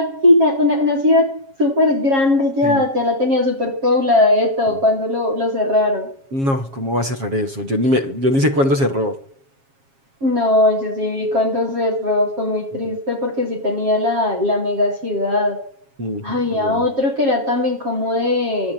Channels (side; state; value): left; late; 7.4 ms